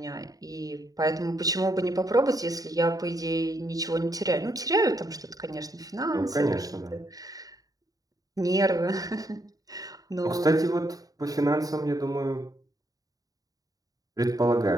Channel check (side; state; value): left; late; 0.18 ms